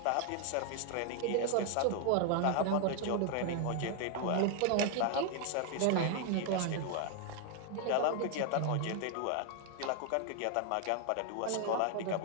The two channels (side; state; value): both; different; correlation 0.00